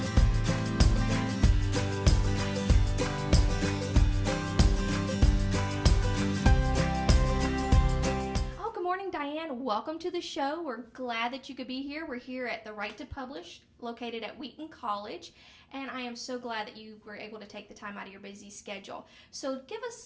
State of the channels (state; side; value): identical; both; correlation 1.00